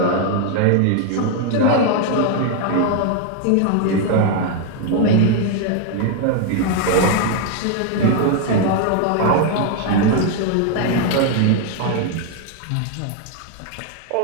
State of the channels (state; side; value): different; both; correlation 0.00